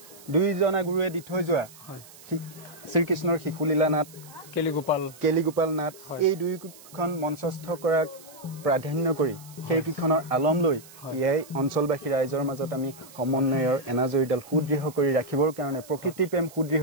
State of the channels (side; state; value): right; noise; hiss, 21 dB below the sound